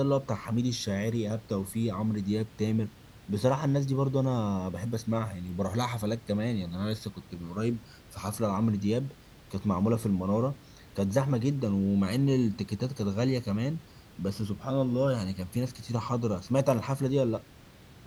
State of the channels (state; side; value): identical; both; correlation 1.00